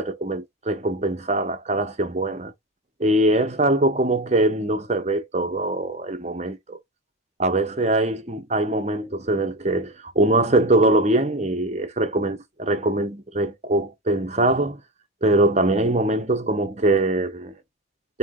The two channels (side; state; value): both; normal; correlation 0.20